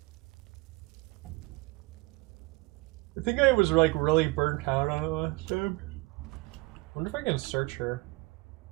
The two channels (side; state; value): left; quieter; 24.7 dB